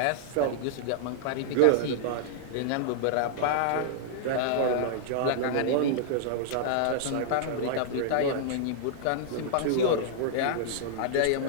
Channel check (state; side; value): different; both; correlation -0.01